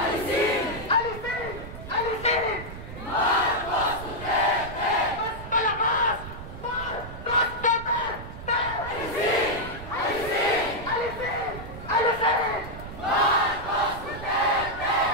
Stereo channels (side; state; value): right; noise; rumble, 12 dB below the sound